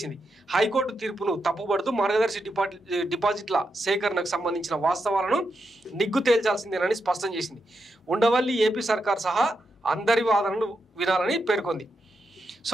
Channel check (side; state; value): both; normal; correlation 0.85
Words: హైకోర్టు తీర్పును తప్పుపడుతూ మార్గదర్శి డిపాజిట్ల సేకరణకు సంబంధించిన వాస్తవాలను నిగ్గు తేల్చాల్సిందేనని స్పష్టం చేసింది. ఉండవల్లి ఏపీ సర్కార్ సహా అందరి వాదనలు వినాలని పేర్కొంది.